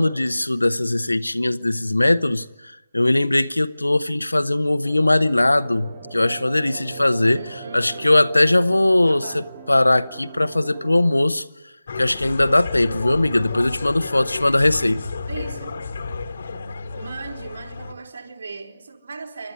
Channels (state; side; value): inverted; both; correlation -0.98